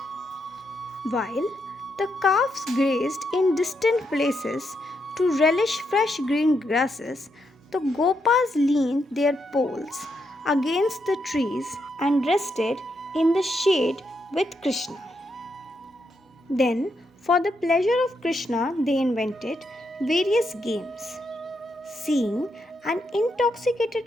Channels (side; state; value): both; normal; correlation 0.80